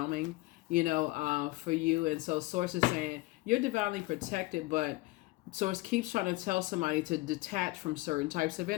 for you. And so source is saying you're divinely protected, but source keeps trying to tell somebody to detach from certain types of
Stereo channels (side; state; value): right; quieter; 21.0 dB